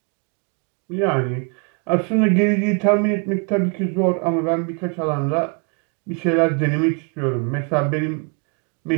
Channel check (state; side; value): quieter; left; 36.5 dB